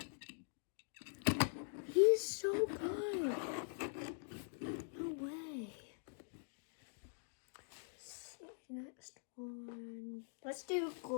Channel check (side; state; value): right; silent; digital silence